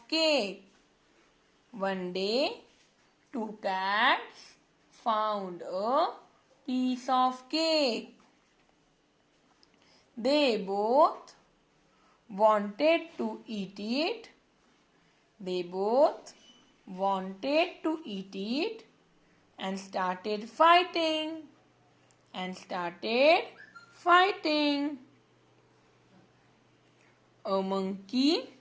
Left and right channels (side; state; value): both; identical; correlation 1.00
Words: cake. One day, two cats found a piece of cake. They both wanted to eat it. They both wanted to eat it and started fighting. A monkey